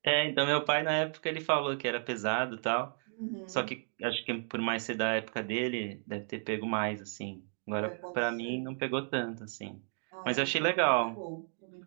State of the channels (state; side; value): silent; left; 56 dB below the other